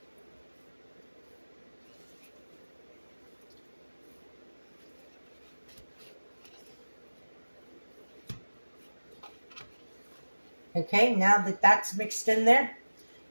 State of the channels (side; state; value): both; inverted; correlation -1.00